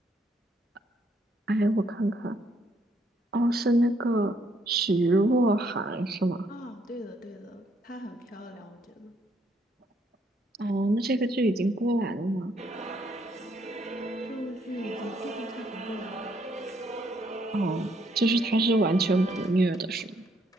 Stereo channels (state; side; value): normal; both; correlation 0.70